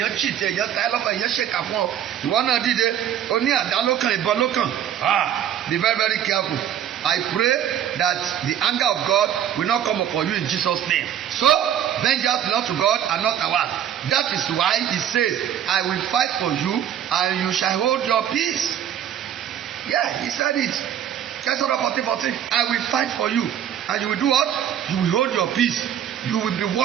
cheat, èèyàn ta ẹ́ lọ́pàá, èèyàn ṣèkà fún ọ. Ìwọ náà dìde, o ní àdá lókàn, ìbọn lókàn. Be very very careful. I pray that the anger of God will not come upon you in Jesus' name. So, vengeance belongs to God and not ours. That is why he says, I will fight for you and you shall hold your peace. Yeah, he said it. Exodus 14:14. I will fight for you and you will do what? You will hold your peace. You will be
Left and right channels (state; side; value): quieter; left; 10.1 dB